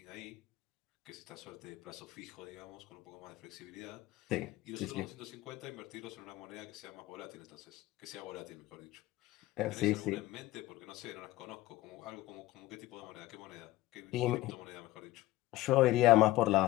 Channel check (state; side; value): quieter; right; 17.2 dB